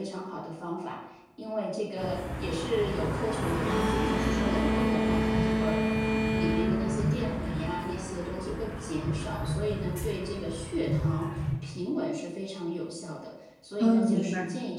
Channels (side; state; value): both; identical; correlation 1.00